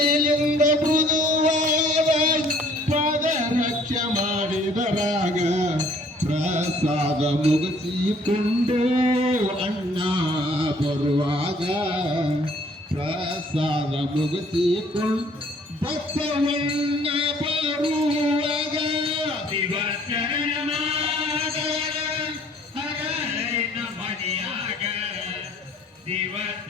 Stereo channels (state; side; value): normal; both; correlation 0.58